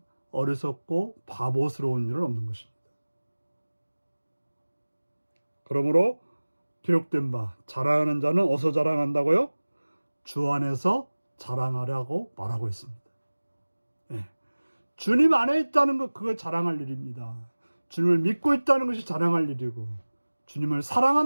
어리석고 바보스러운 일은 없는 것입니다. 그러므로 기록된 바, 자랑하는 자는 어디서 자랑한다고요? 주 안에서 자랑하라고 말하고 있습니다. 네. 주님 안에 있다는 것, 그걸 자랑할 일입니다. 주님을 믿고 있다는 것이 자랑할 일이고, 주님을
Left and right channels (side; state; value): both; inverted; correlation -1.00